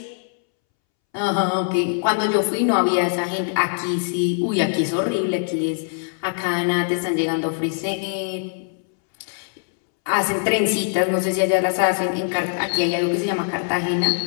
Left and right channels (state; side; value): silent; right; 64 dB below the other